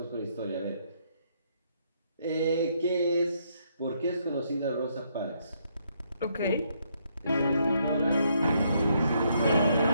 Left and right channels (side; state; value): both; inverted; correlation -0.73